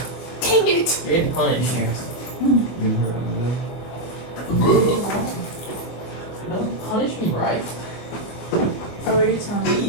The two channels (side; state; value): right; late; 24 ms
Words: Dang it! You're getting punished. Punish me, right? Oh, are you telling me?